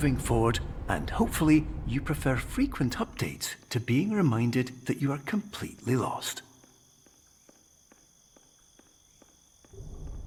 forward, and hopefully you prefer frequent updates to being reminded that you are completely lost.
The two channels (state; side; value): identical; both; correlation 1.00